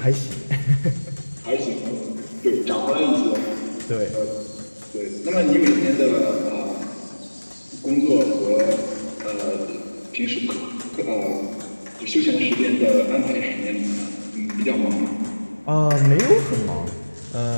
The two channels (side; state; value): both; inverted; correlation -1.00